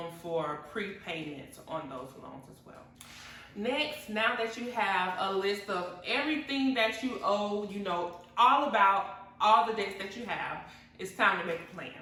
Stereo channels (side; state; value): both; identical; correlation 1.00